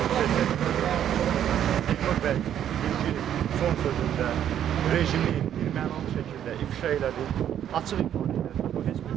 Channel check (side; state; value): left; quieter; 10.2 dB